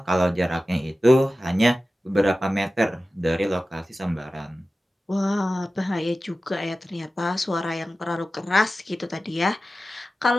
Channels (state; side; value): normal; both; correlation 0.95